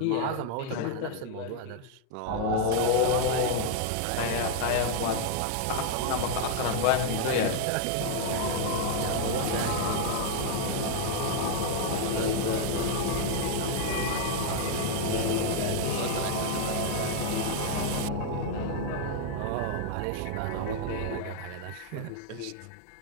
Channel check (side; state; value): both; different; correlation 0.00